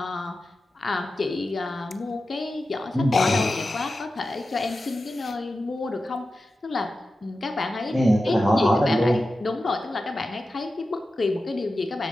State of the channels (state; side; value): normal; both; correlation 0.93